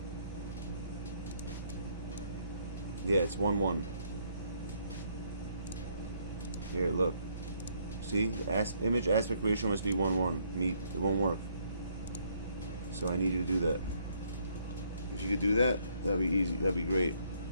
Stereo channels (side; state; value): both; inverted; correlation -0.69